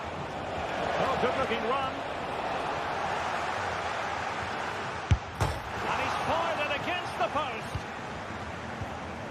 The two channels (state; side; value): identical; both; correlation 1.00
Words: Oh, good-looking run. And he's fired it against the post.